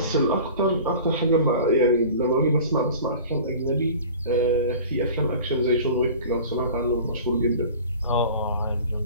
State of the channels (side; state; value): both; inverted; correlation -0.41